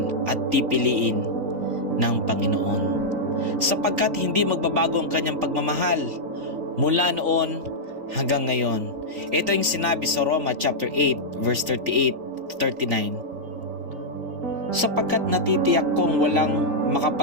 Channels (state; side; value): late; left; 3.8 ms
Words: at pipiliin ng Panginoon. Sapagkat hindi magbabago ang kanyang pagmamahal mula noon hanggang ngayon. Ito yung sinabi sa Roma chapter 8 verse 38-39. Sapagkat natitiyak kong walang